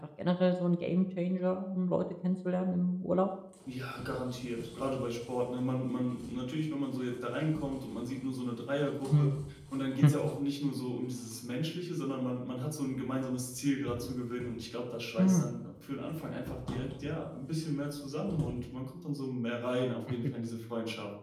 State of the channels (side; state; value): both; identical; correlation 1.00